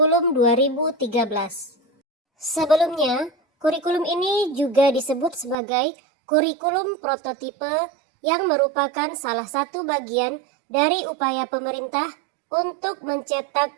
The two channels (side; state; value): left; drops out; at 5.6 s